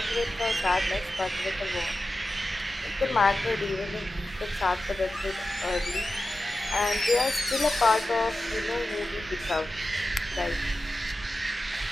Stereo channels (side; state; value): both; normal; correlation 0.93